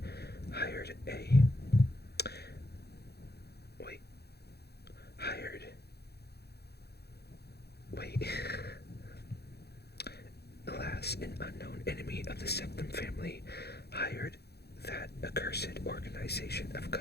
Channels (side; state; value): right; late; 0.47 ms